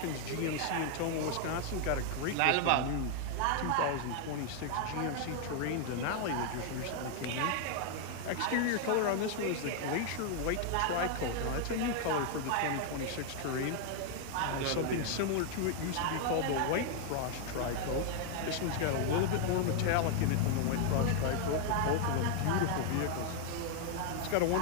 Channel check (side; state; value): both; different; correlation 0.00